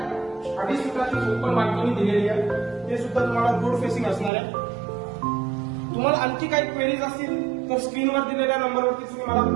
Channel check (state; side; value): drops out; left; at 4.3 s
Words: 2.5 फुटाची ओपन बाल्कनी दिलेली आहे. ते सुद्धा तुम्हाला रोड फेसिंग असणार आहे. तुम्हाला आणखी काही क्वेरीज असतील तर स्क्रीनवर दिलेल्या नंबरवरती तुम्ही मला